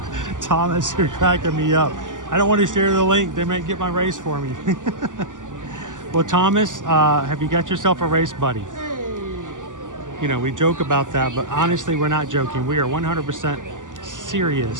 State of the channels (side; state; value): left; late; 0.87 ms